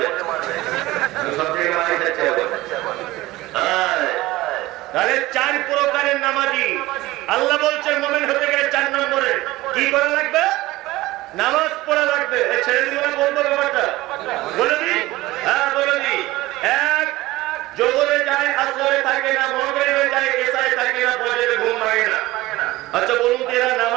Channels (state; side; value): quieter; left; 18.4 dB